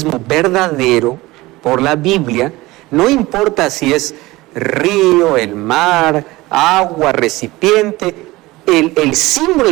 verdadero, por la Biblia, no importa si es río, el mar, agua, recipiente, el símbolo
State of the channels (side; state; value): left; quieter; 19.9 dB